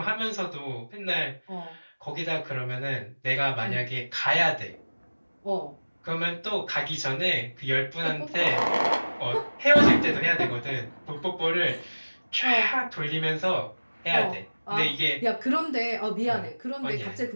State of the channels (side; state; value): both; inverted; correlation -1.00